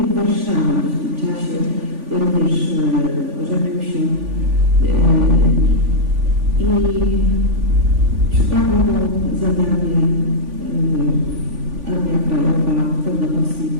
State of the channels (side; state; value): left; late; 3.5 ms